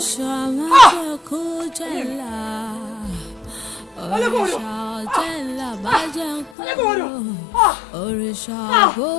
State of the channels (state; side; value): drops out; right; at 6.5 s